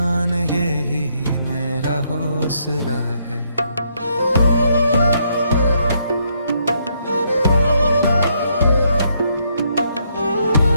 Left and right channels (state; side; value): inverted; both; correlation -0.74